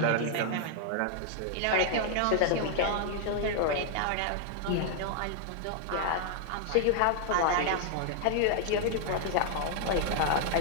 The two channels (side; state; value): both; different; correlation 0.00